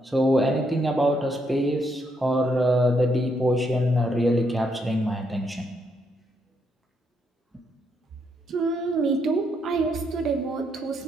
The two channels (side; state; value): both; normal; correlation 0.76